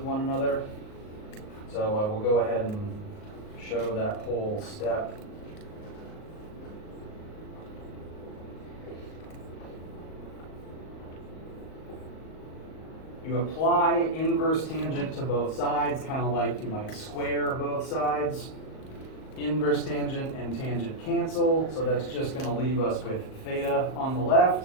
one another. So I will go ahead and show that whole step. You apply inverse tangent to both sides, kind of like you might square both sides. Inverse tangent and tangent cancel, so that's just going to leave us with theta on the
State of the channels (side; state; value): right; late; 38 ms